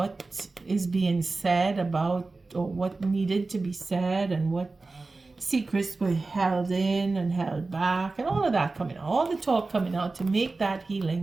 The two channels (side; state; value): left; quieter; 3.6 dB